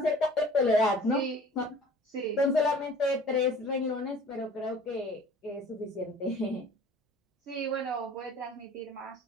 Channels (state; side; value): normal; both; correlation 0.47